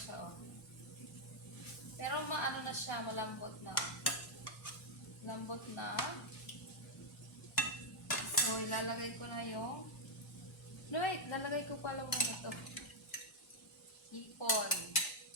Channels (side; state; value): both; normal; correlation -0.02